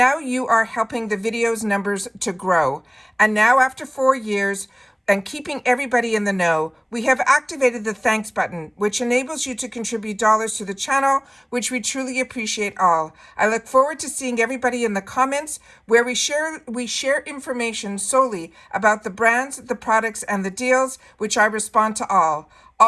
you are helping the video's numbers to grow. And now after 4 years, and keeping everybody in the know, we have activated the thanks button, which enables you to contribute dollars to the channel, which we truly appreciate all. I look forward to seeing everybody in the comments where we share information solely about the brands, the products, and the deals, which I respond to all.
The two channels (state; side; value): identical; both; correlation 1.00